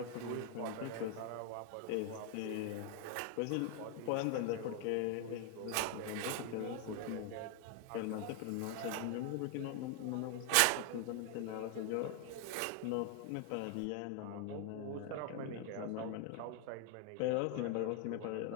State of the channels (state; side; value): different; both; correlation 0.00